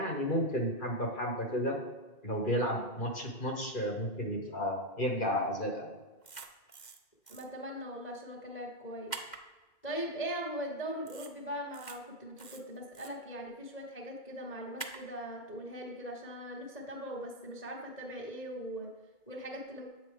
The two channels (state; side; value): late; right; 2.1 ms